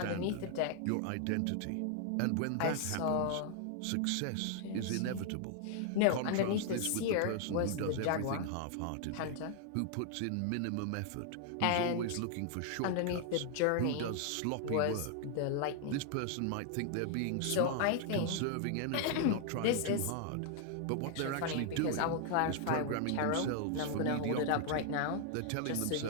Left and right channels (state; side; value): different; both; correlation 0.00